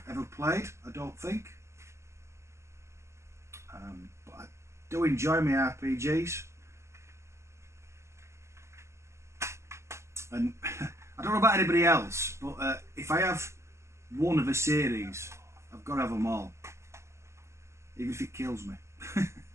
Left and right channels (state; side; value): late; left; 0.13 ms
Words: ever played, I don't think. But I do enjoy my RPGs. And I don't know about anybody else, but if I have one of a series, I've got to have them all. Even if it kills me.